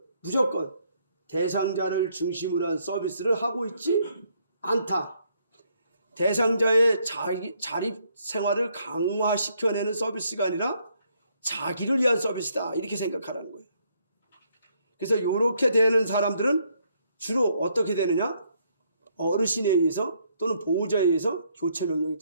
무조건 대상자를 중심으로 한 서비스를 하고 있지 않다. 대상자의 자립 생활을 강화시켜내는 서비스가 아니라 자기를 위한 서비스다. 이렇게 생각하라는 거예요. 그래서 이렇게 되는 사람들은 주로 어떻게 되느냐? 어르신에 의해서 또는 보호자에 의해서 교체 명령이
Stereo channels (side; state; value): both; inverted; correlation -0.71